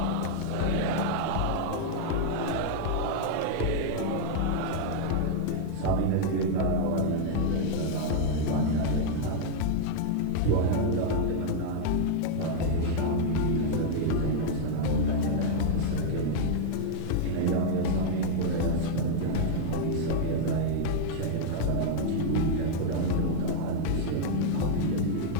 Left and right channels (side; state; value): both; different; correlation -0.01